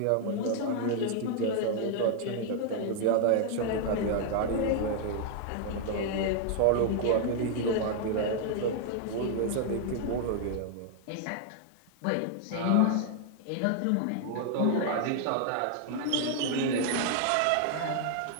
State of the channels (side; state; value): both; different; correlation 0.00